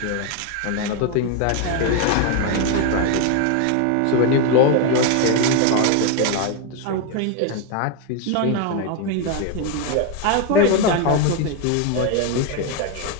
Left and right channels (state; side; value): different; both; correlation 0.01